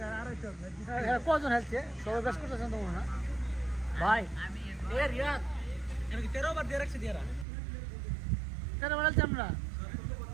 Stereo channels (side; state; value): left; drops out; at 7.5 s